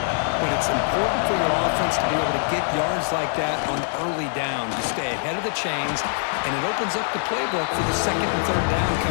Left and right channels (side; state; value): right; silent; 63 dB below the other